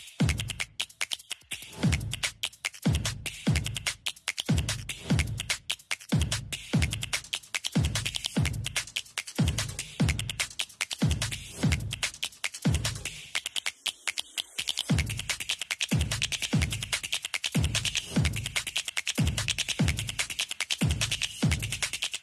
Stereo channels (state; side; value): identical; both; correlation 1.00